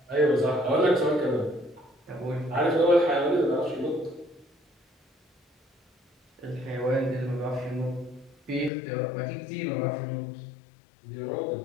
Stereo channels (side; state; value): right; drops out; at 8.7 s